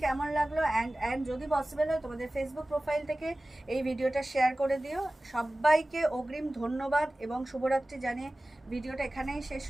কেমন লাগলো। অ্যান্ড যদি পসিবল হয় তোমাদের ফেসবুক প্রোফাইল থেকে এই ভিডিওটা শেয়ার করে দিও। সবাইকে অগ্রিম ধন্যবাদ এবং শুভরাত্রি জানিয়ে ভিডিওটা এখানেই শেষ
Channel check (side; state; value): both; normal; correlation 0.97